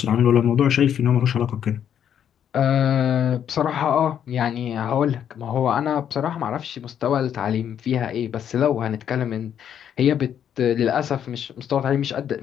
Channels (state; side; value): quieter; right; 9.2 dB